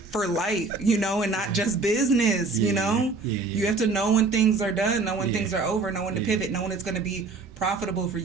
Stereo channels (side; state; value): left; quieter; 4.0 dB